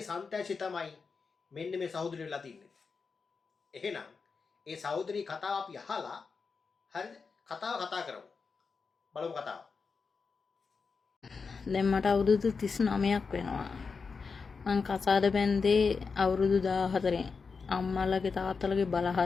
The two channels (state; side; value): quieter; right; 5.0 dB